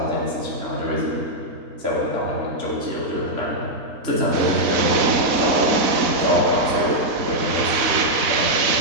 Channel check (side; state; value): left; late; 4.0 ms